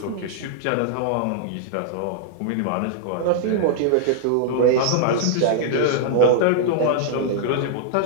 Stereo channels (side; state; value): both; different; correlation -0.01